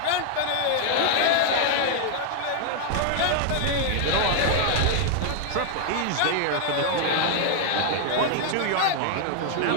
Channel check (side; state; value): both; different; correlation 0.00